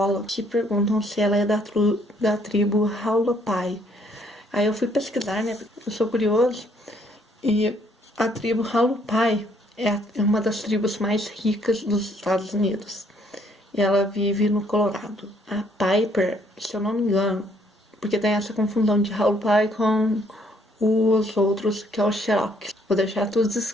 que perguntam se ela é da tribo Howlopie. Aí eu fui pesquisar, né? Eu sou curioso. E a tribo Howlopie é uma das tribos mais ricas dos Estados Unidos. E ela vive no Colorado. A Piper, se eu não me engano, porque tem essa confusão de Howlopie com os outros, que é o Cherokee. Vou deixar tudo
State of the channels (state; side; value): normal; both; correlation 0.66